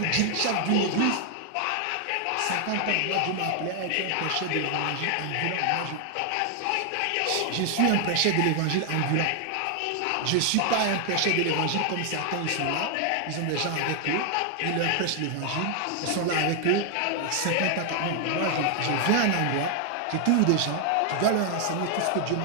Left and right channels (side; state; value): both; different; correlation 0.00